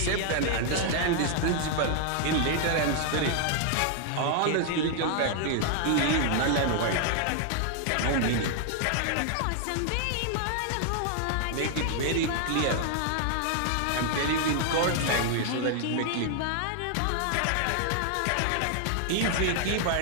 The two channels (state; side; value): different; both; correlation 0.00